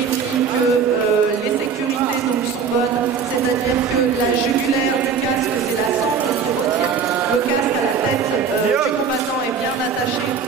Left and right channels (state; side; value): quieter; left; 6.1 dB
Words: que les sécurités donc, sont bonnes, c'est-à-dire que la jugulaire du casque, c'est la sangle qui retient le casque à la tête du combattant est bien attachée,